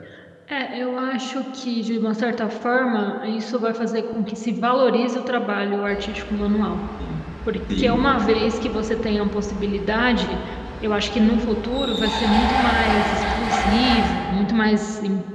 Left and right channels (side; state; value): both; identical; correlation 1.00